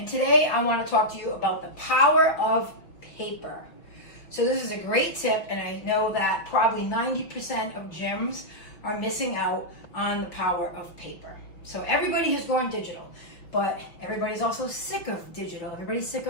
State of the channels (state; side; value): late; right; 5.8 ms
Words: today I want to talk to you about the power of paper. So this is a great tip, and I know that probably 90% of gyms are missing out on the power of paper. So everybody has gone digital, but everybody's also sick of digital. Everybody's sick